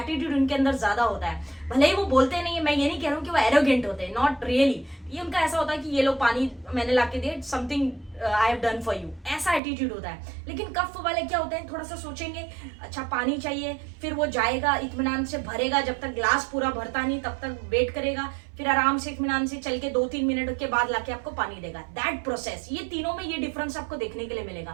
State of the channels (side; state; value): left; drops out; at 9.6 s